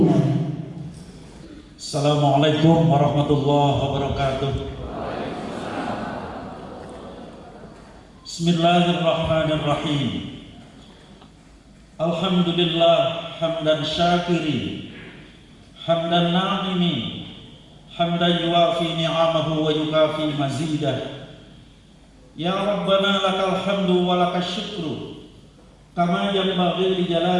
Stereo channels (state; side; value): identical; both; correlation 1.00